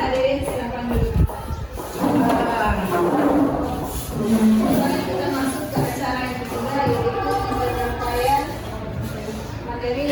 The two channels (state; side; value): identical; both; correlation 1.00